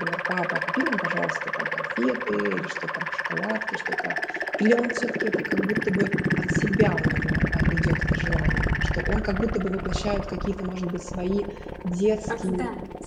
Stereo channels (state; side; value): identical; both; correlation 1.00